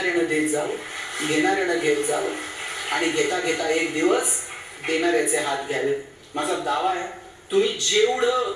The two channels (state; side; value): identical; both; correlation 1.00